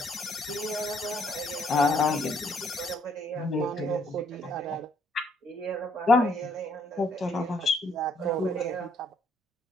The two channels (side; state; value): both; normal; correlation 0.68